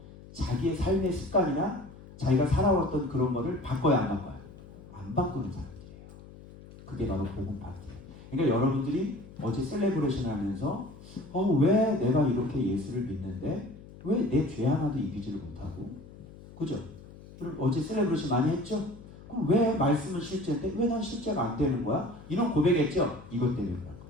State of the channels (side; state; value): left; noise; hum, 18 dB below the sound